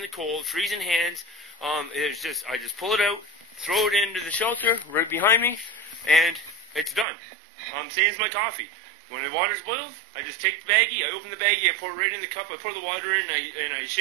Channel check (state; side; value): drops out; left; at 7.1 s